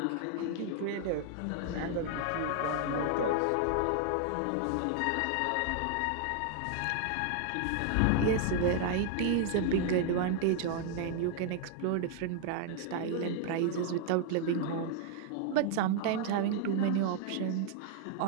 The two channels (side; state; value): both; different; correlation 0.00